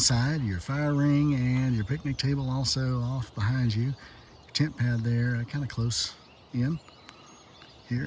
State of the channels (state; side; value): identical; both; correlation 1.00